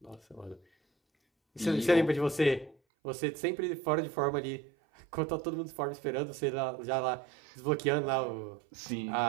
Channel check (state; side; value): drops out; left; at 2.8 s